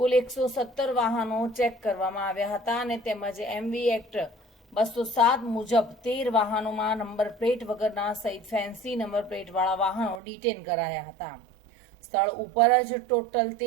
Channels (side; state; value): left; drops out; at 10.2 s